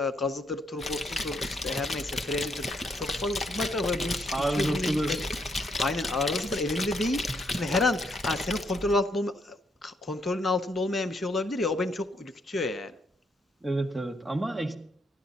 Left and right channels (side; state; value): both; normal; correlation 0.74